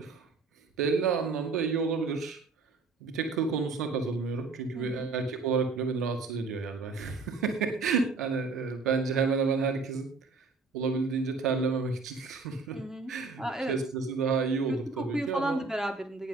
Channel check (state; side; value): quieter; left; 4.2 dB